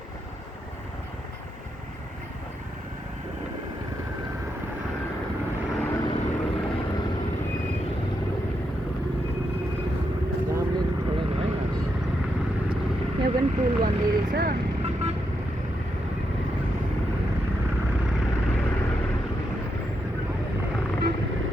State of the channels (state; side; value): normal; both; correlation 0.82